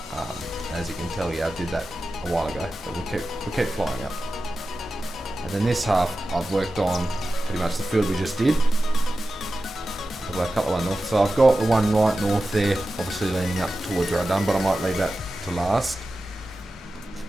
As you can tell, yeah, I did that a while ago, but we keep flying up. And then this half I've worked on pretty much the field we just did. I've got a couple of north. So I've got the one right north there, obviously leaning up towards where I've done, but I might leave that to last.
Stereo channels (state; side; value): normal; both; correlation 0.94